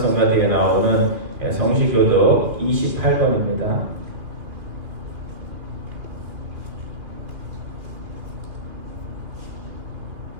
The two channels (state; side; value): late; left; 2.3 ms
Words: 뒤에 나오는 성시교독 28번입니다.